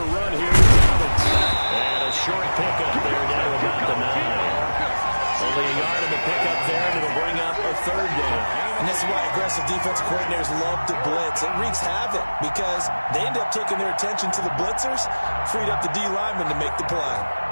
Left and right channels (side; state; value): both; inverted; correlation -1.00